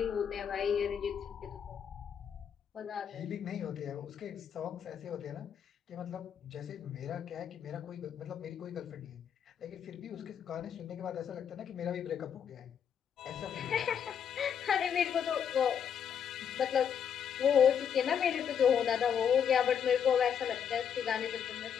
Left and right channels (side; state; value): right; quieter; 8.0 dB